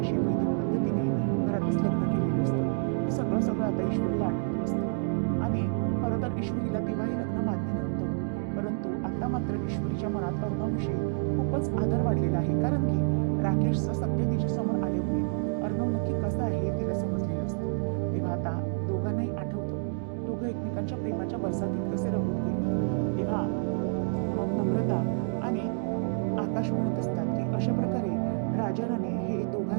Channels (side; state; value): left; silent; 59 dB below the other